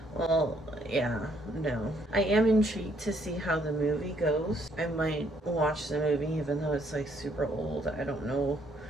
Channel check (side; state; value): both; normal; correlation 0.69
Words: Well, yeah, no. I am intrigued to see how the movie goes. I might watch the movie even though it's like super old. I don't know